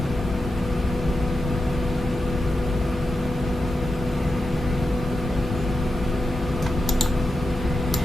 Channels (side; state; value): both; normal; correlation 0.88